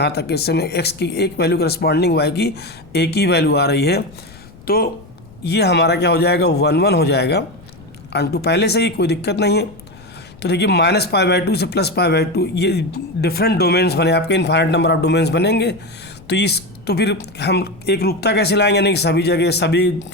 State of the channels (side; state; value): left; noise; rumble, 22 dB below the sound